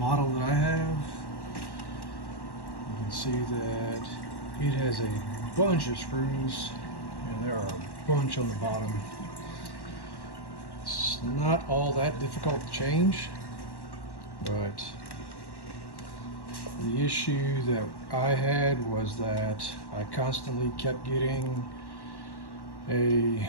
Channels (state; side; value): late; right; 1.1 ms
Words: that I have. You can see that it has a bunch of screws, and there are a bunch on the bottom. It's not all that difficult to change, but the issue that I had was that I constantly kept getting a